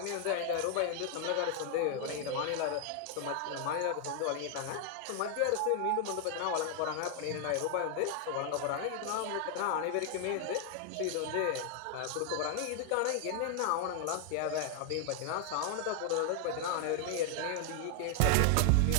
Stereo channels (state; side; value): different; both; correlation 0.00